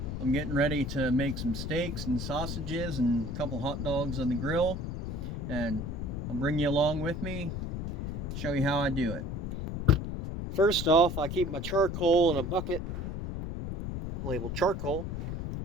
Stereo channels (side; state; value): left; noise; rumble, 4 dB below the sound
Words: I'm getting ready to make some steaks and sausages and a couple hot dogs on the grill, and I'll bring you along with me, show you how I do it. First off, I keep my charcoal in a bucket labeled charcoal,